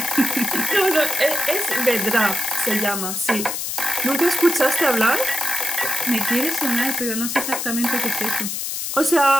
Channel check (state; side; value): noise; left; hiss, 3 dB below the sound